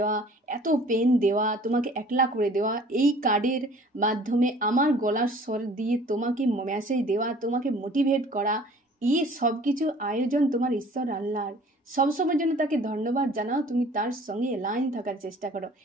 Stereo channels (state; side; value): normal; both; correlation 0.50